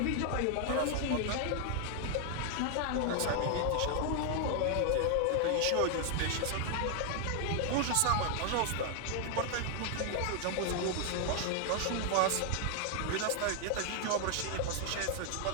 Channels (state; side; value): different; both; correlation 0.00